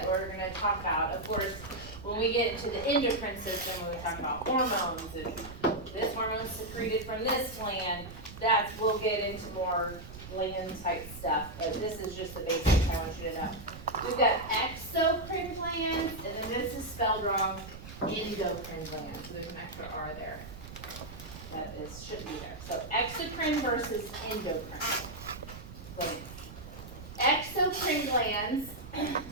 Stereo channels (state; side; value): noise; right; rumble, 13 dB below the sound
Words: we're going to talk about. Of course, when we get into the endocrine system, when we talk about hormones and this hormone is secreted from this gland, we'll get into more gland type stuff, but this is just the basics I want you to know. We've got exocrine glands, and then this is spelled wrong, endocrine glands. So there's an extra R there. That should be there. So exocrine versus endocrine glands. Exocrine glands,